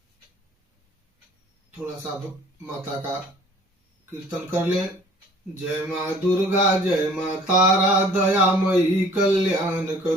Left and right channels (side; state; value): both; normal; correlation 0.51